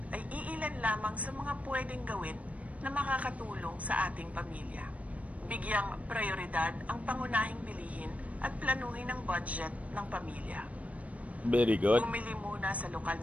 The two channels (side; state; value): left; late; 0.067 ms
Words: ay iilan lamang sa mga pwedeng gawin na makakatulong sa ating pamilya. Bigyang prioridad ang pangunahing bilihin at planuhin ang budget ng pamilya. Very good. Bumili muna sa lokal